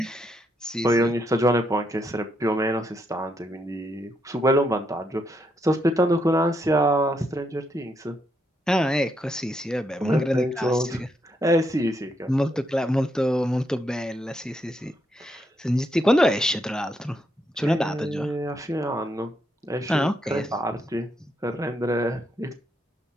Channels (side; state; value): both; normal; correlation 0.78